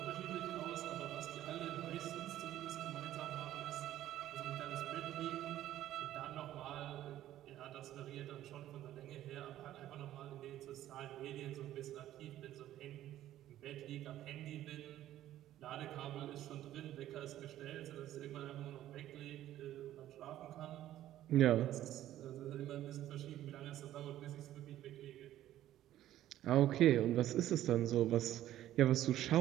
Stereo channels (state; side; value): quieter; left; 13.1 dB